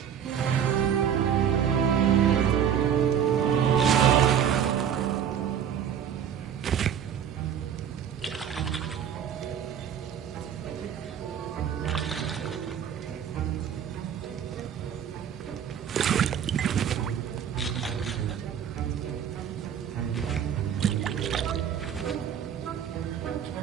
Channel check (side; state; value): left; quieter; 8.8 dB